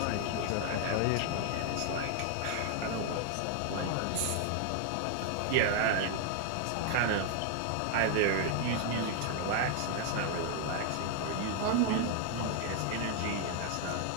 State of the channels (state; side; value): different; both; correlation 0.00